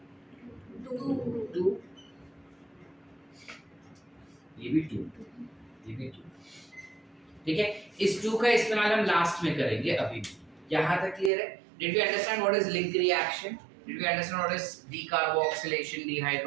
Two. ये भी टू, ये भी टू। ठीक है, इस टू का इस्तेमाल हम लास्ट में करेंगे अभी। यहाँ तक क्लियर है? Did we understand what is link reaction? Did we understand what is decarboxylation,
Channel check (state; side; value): drops out; left; at 11.3 s